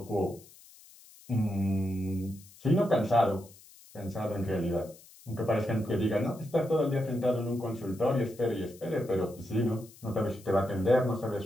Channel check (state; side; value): noise; left; hiss, 23 dB below the sound